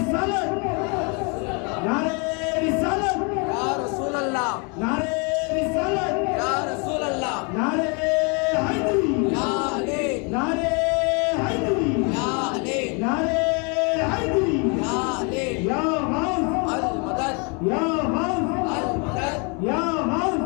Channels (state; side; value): quieter; right; 34.0 dB